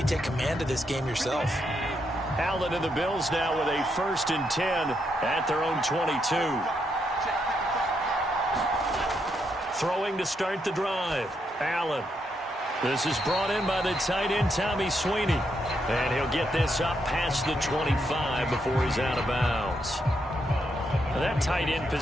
take command of this game yourself. Allen and the Bills now with a 1st and 10 at their own 22. Throwing to start the drive. Allen. This is brought in by the tight end, Tommy Sweeney. And he'll get this up past the 25 before he's out of bounds. That tight end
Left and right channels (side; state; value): both; normal; correlation 0.79